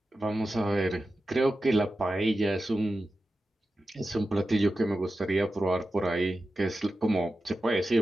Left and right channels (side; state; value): both; normal; correlation 0.92